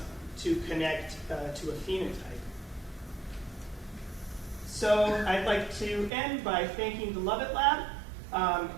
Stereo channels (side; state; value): left; drops out; at 6.1 s